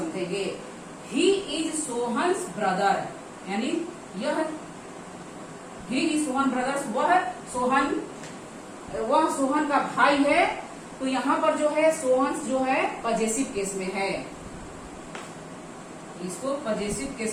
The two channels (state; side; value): identical; both; correlation 1.00